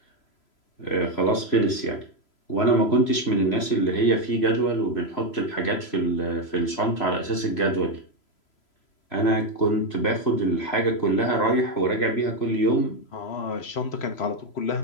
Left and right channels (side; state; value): right; late; 3.0 ms